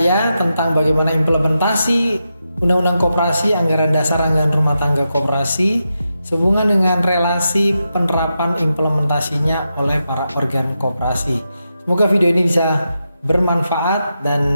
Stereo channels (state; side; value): inverted; both; correlation -0.87